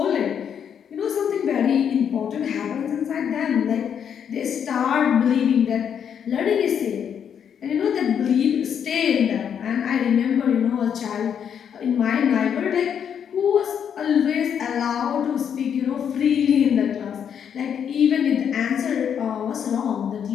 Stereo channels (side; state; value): right; quieter; 8.1 dB